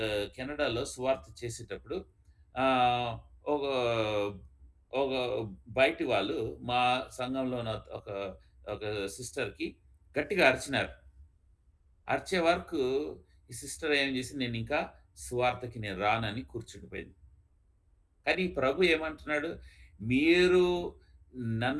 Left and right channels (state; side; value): identical; both; correlation 1.00